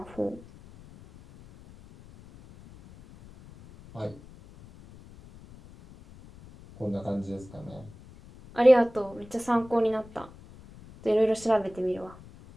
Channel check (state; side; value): noise; left; rumble, 21 dB below the sound